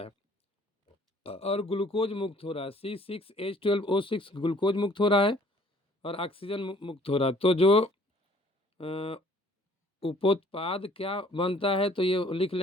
और ग्लूकोज मुक्त हो रहा है। C6H12O6 ग्लूकोज मुक्त हो रहा है और ऑक्सीजन मुक्त हो रहा है। तो जो उपोत्पाद क्या बनता है, तो ये लिख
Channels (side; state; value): both; normal; correlation 0.57